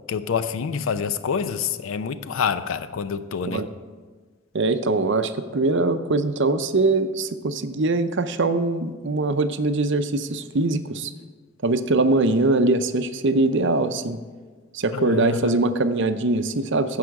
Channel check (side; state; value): both; normal; correlation 0.13